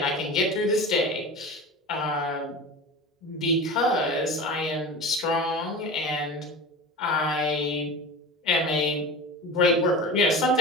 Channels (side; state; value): both; normal; correlation 0.32